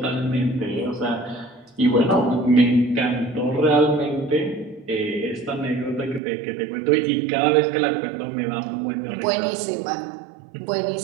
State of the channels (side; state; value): left; drops out; at 6.2 s